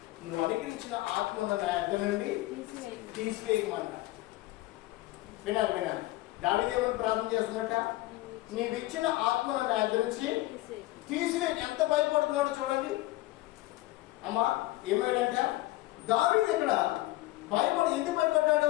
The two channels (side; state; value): right; quieter; 17.9 dB